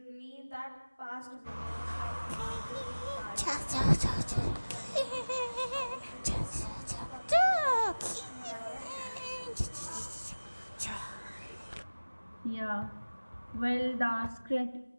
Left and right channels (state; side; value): inverted; both; correlation -1.00